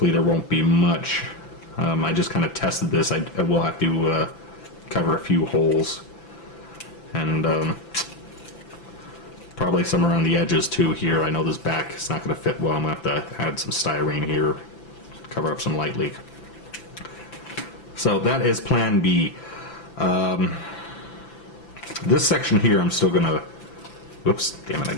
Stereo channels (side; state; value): right; late; 6.0 ms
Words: there won't be much. I just kind of tested this. I will have to cover a few holes, and probably some around the edges too here. I know this back is not going to fit well. I'm going to have to add some styrene here, cover up some light leak. So that is plan B. This section here I'm still going to, whoops, damn it, I